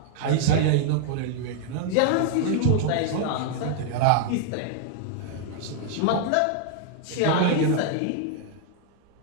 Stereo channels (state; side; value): different; both; correlation 0.00